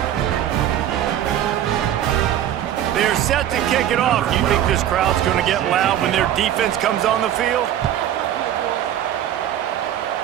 They're set to kick it off. Do you think this crowd's going to get loud when their defense comes on the field?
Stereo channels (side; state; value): left; quieter; 11.2 dB